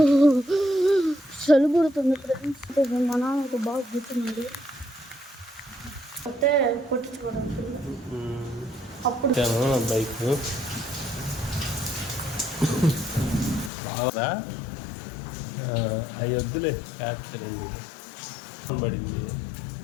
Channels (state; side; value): drops out; right; at 13.7 s